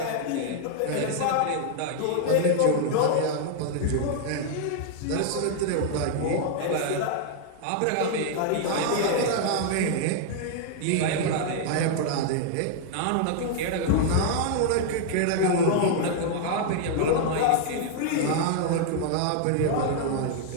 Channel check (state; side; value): different; both; correlation 0.00